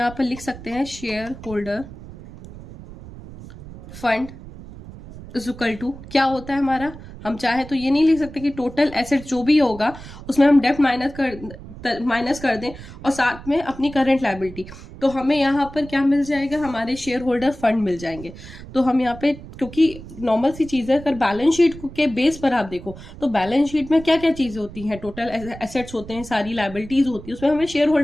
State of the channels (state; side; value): noise; right; rumble, 15 dB below the sound